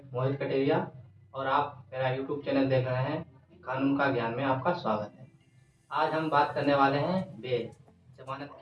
मोहित कटेरिया और आप मेरा यूट्यूब चैनल देख रहे हैं। कानून का ज्ञान में आपका स्वागत है। आज हम बात करने वाले हैं बेल। जमानत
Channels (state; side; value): identical; both; correlation 1.00